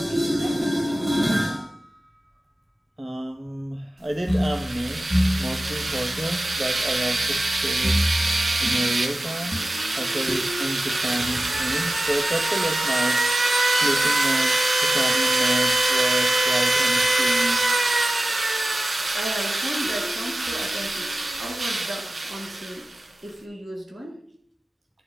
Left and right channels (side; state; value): both; normal; correlation 0.95